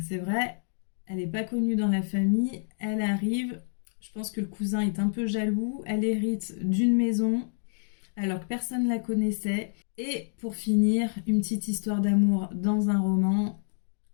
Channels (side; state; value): right; silent; digital silence